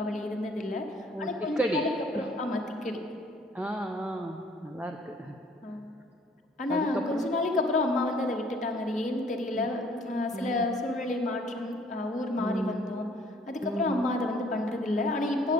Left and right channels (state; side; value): normal; both; correlation 0.59